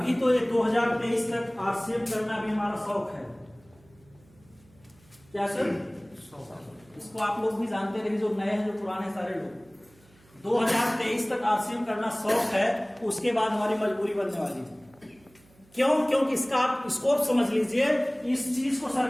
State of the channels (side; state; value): right; noise; hum, 29 dB below the sound